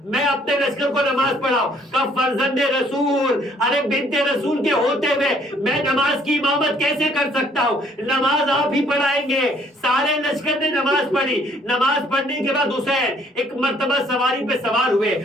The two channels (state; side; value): normal; both; correlation 0.63